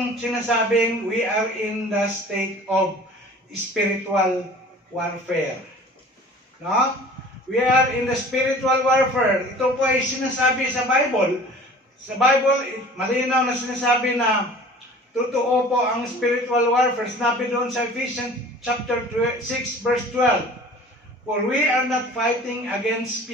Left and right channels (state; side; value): normal; both; correlation 0.45